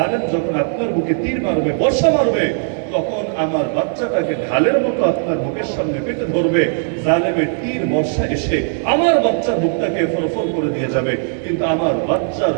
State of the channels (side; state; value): left; silent; digital silence